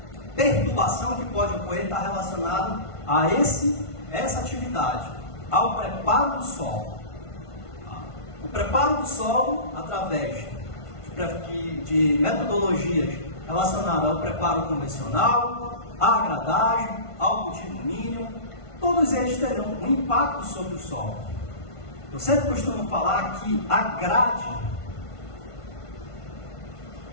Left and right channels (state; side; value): late; right; 1.5 ms